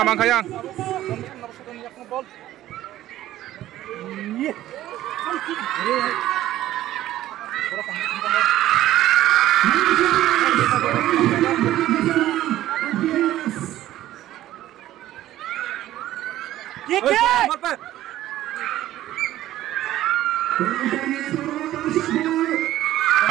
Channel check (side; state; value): left; quieter; 14.0 dB